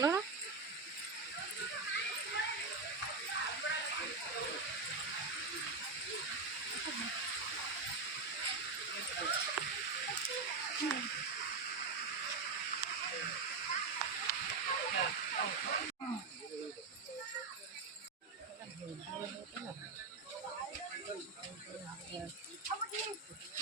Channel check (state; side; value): quieter; left; 4.3 dB